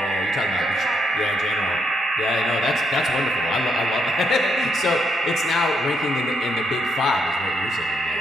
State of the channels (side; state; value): both; normal; correlation 0.76